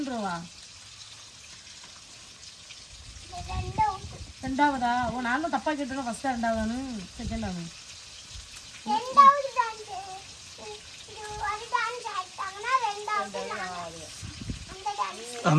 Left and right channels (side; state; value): both; identical; correlation 1.00